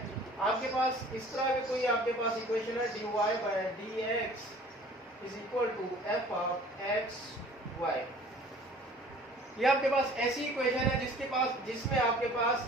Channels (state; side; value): normal; both; correlation 0.49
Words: आपके पास इस तरह के कोई आपके पास इक्वेशन है, dy by dx is equal to f of x y। ये आपके पास ऐसी इक्वेशन है जिसमें आपके